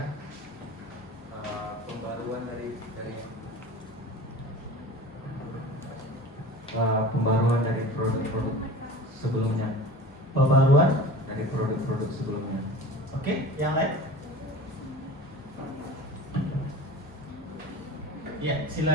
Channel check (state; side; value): normal; both; correlation 0.37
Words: Pembaruan pembaruan dari produk-produk sebelumnya. Pembaruan Dari produk-produk sebelumnya. Oke, yang lain? Ya,